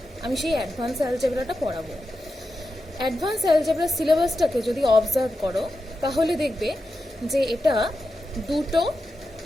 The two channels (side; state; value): both; normal; correlation 0.89